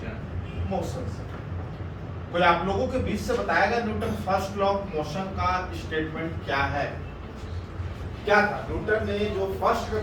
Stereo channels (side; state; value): both; identical; correlation 1.00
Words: motion से। कोई आप लोगों के बीच से बताएगा Newton first law of motion का स्टेटमेंट क्या है? क्या था न्यूटन ने जो फर्स्ट